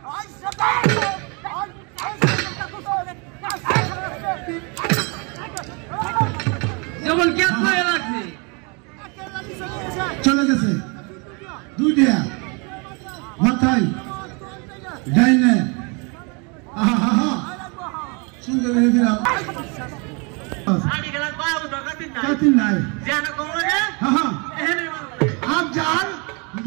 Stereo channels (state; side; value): quieter; left; 32.1 dB